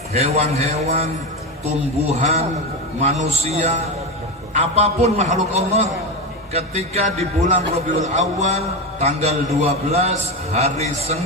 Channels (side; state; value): both; normal; correlation 0.16